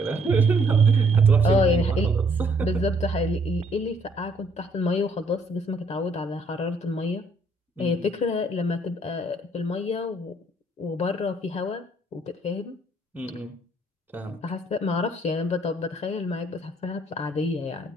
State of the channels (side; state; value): both; normal; correlation 0.65